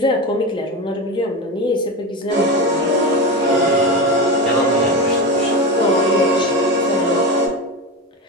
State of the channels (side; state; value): both; normal; correlation 0.21